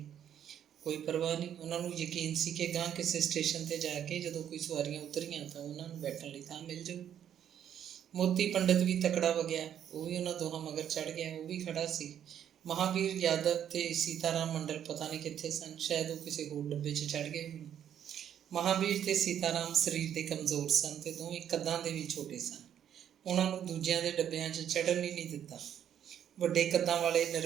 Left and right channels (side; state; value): left; quieter; 9.7 dB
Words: ਕੋਈ ਪਰਵਾਹ ਨਹੀਂ। ਉਹਨਾਂ ਨੂੰ ਯਕੀਨ ਸੀ ਕਿ ਗਾਂਹ ਕਿਸੇ ਸਟੇਸ਼ਨ 'ਤੇ ਜਾ ਕੇ ਜਦੋਂ ਕੋਈ ਸਵਾਰੀਆਂ ਉਤਰੀਆਂ ਤਾਂ ਉਹਨਾਂ ਨੂੰ ਬੈਠਣ ਲਈ ਥਾਂ ਮਿਲ ਜਾਊ। ਮੋਤੀ ਪੰਡਿਤ ਵੀ ਤਕੜਾ ਵਗਿਆ, ਉਹ ਵੀ ਉਹਨਾਂ ਦੋਹਾਂ ਮਗਰ ਚੜ੍ਹ ਗਿਆ। ਉਹ ਵੀ ਖੜ੍ਹਾ ਸੀ। ਮਹਾਵੀਰ ਯਾਦਵ ਤੇ ਸੀਤਾਰਾਮ ਮੰਡਲ ਪਤਾ ਨਹੀਂ ਕਿੱਥੇ ਸਨ। ਸ਼ਾਇਦ ਉਹ ਕਿਸੇ ਹੋਰ ਡੱਬੇ 'ਚ ਚੜ੍ਹ ਗਏ ਹੋਣ। ਮਹਾਵੀਰ ਤੇ ਸੀਤਾਰਾਮ ਸਰੀਰ ਦੇ ਕਮਜ਼ੋਰ ਸਨ ਤੇ ਦੋਵੇਂ ਕੱਦਾਂ ਦੇ ਵੀ ਛੋਟੇ ਸਨ। ਉਹਨਾਂ ਨੂੰ ਦੂਜਿਆਂ ਦੇ ਡੱਬਿਆਂ 'ਚ ਚੜ੍ਹਨ ਹੀ ਨਹੀਂ ਦਿੱਤਾ। ਵੱਡੇ ਕੱਦਾਂ ਵਾਲੇ